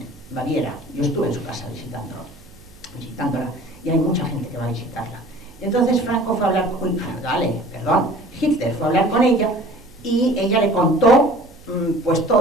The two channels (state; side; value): noise; right; hum, 25 dB below the sound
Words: Baviera. Yo estuve en su casa visitándola, y hay mucha gente que va a visitarla. Entonces Franco fue a hablar Hitler fue a hablar con ella, y ella le contó pues